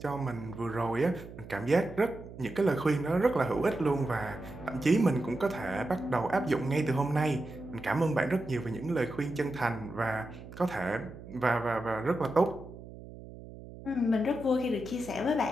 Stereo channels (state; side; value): noise; right; hum, 15 dB below the sound